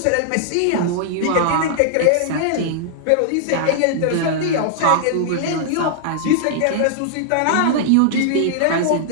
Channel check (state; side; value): different; both; correlation -0.01